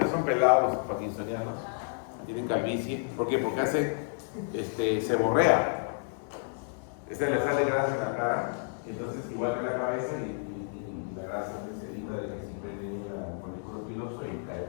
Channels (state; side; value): silent; right; 57 dB below the other